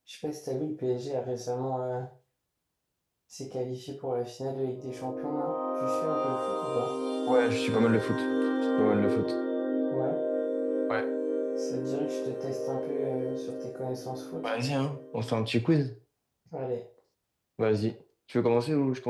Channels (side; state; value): both; identical; correlation 1.00